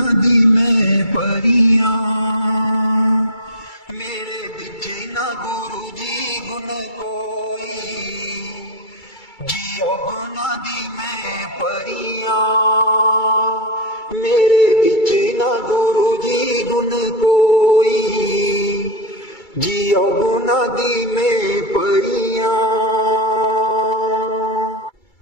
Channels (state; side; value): late; right; 2.3 ms